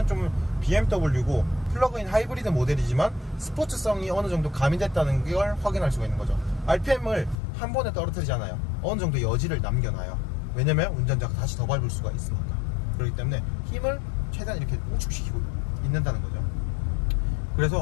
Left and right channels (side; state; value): right; drops out; at 7.4 s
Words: 좀 BMW고 플러그인 하이브리드 모델이지만 스포츠성이 어느 정도 가미됐다는 걸 확인할 수가 있는 거죠. RPM을 한 번에 떨어뜨리잖아요. 어느 정도 여지를 남겨놔요. 왜냐면 운전자가 다시 더 밟을 수가 있으니까. 그렇기 때문에 힘을 최대한 이렇게 우측시키고 있는다는 거죠.